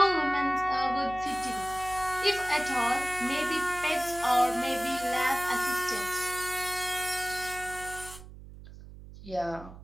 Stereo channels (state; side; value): noise; right; hum, 16 dB below the sound